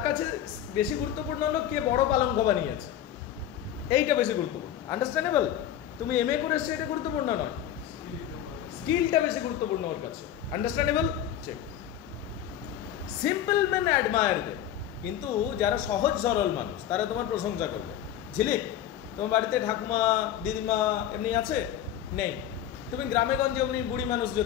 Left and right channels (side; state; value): right; quieter; 10.8 dB